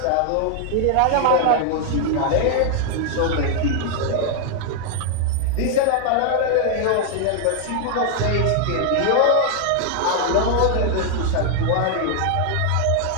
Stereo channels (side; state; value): both; different; correlation 0.00